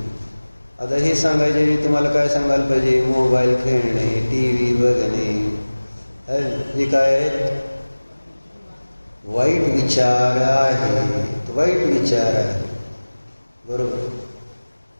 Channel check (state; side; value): inverted; both; correlation -1.00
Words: आता हे सांगायचे तुम्हाला काय सांगायला पाहिजे? मोबाईल खेळणे, TV बघणे, हे काय आहेत? वाईट विचार आहेत, वाईट विचार आहे. बरोबर.